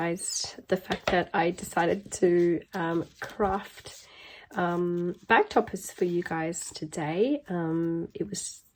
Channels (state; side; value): identical; both; correlation 1.00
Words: the fact that I decided to craft bag toppers for you guys today. It